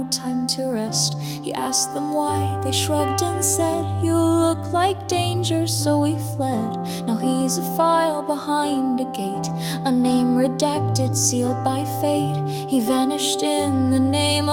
time to rest. He asked them why, they shrugged and said, "You look like danger, so we fled." Now he's a file behind a gate, a name redacted, sealed by fate. He vanished in the name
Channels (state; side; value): identical; both; correlation 1.00